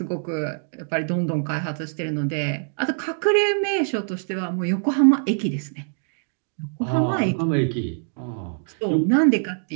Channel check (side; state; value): left; silent; digital silence